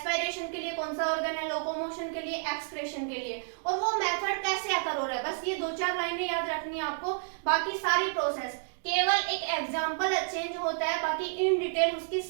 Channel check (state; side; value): silent; left; digital silence